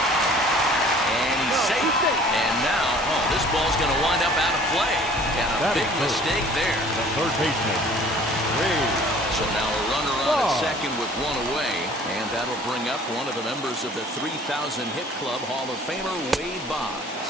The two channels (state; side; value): normal; both; correlation 0.51